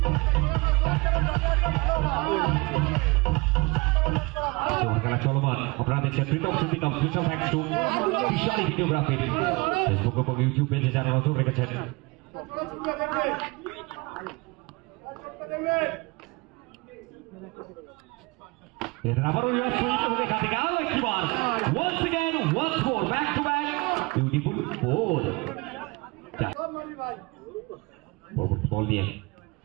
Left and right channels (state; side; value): quieter; left; 25.7 dB